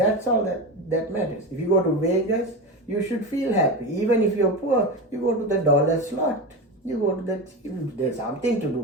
all that matters. If you go to Vegas, you should feel happy. Even if you're poor, you go to the dollar slot. You go to there's something to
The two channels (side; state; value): both; normal; correlation 0.21